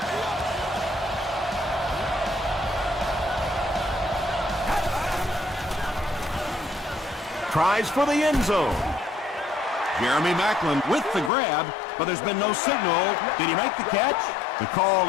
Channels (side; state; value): right; drops out; at 11.3 s